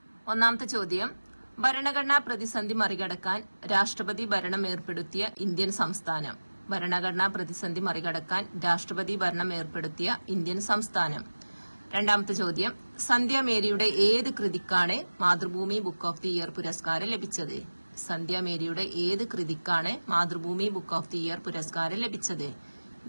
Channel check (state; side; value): inverted; both; correlation -1.00